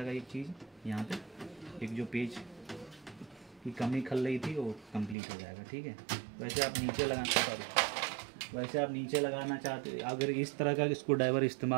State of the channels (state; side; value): drops out; left; at 5.2 s